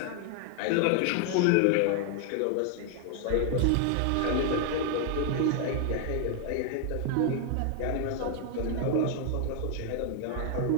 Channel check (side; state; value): both; different; correlation 0.00